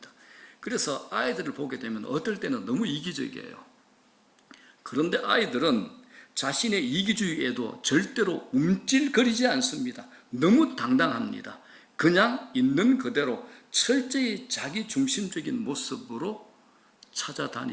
그래서 아이들을 보게 되면 어떨 때는 너무 이기적이에요. 그런데 아이들은 자신의 이기주의에도 절대로 움찔거리지 않습니다. 너무 당당합니다. 그냥 있는 그대로 철저히 자기 중심적인 모습으로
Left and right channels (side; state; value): both; identical; correlation 1.00